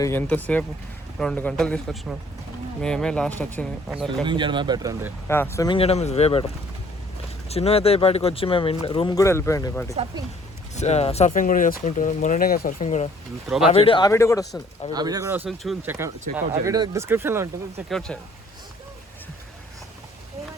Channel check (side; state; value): both; normal; correlation 0.58